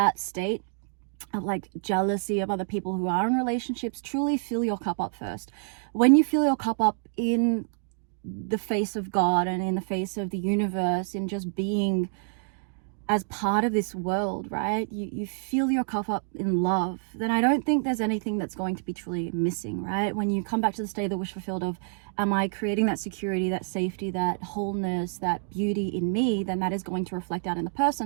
state of like jealousy of other people who are in relationships, truly fill your cup up first. When you fill your cup up in the face of God and in the face of the universe, in just being as part of this world, right? You fill your cup up in love, then I don't think there's anything that's going to be truly missing, right? When you come back to the state of the wish fulfilled of, am I creating that security, that safety, that wholeness, that beauty in me, then that is going to reflect out in the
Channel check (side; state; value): left; silent; digital silence